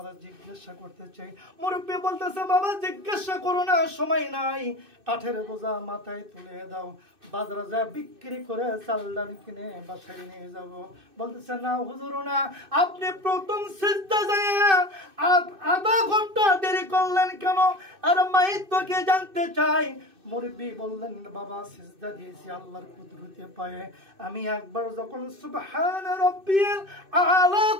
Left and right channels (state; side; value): late; left; 2.6 ms